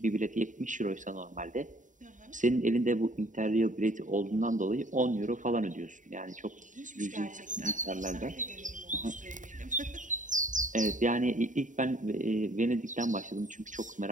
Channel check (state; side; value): late; left; 0.37 ms